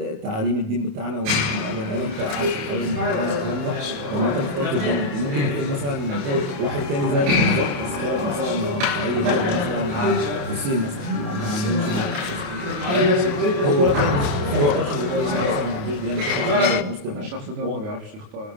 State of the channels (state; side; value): late; left; 28 ms